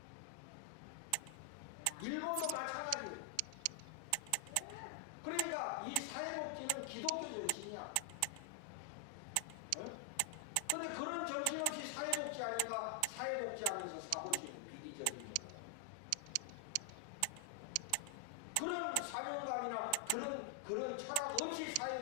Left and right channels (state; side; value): different; both; correlation 0.00